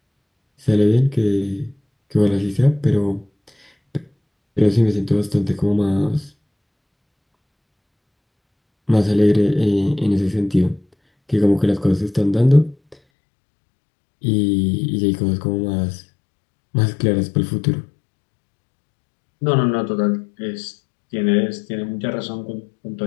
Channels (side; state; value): right; drops out; at 13.0 s